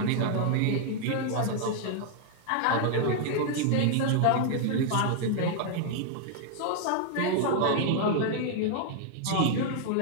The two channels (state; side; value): different; both; correlation -0.01